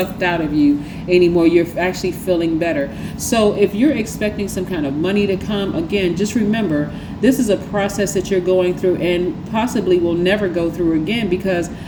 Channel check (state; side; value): identical; both; correlation 1.00